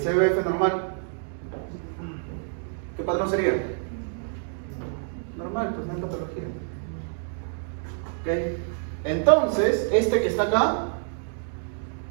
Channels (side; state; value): left; silent; 60 dB below the other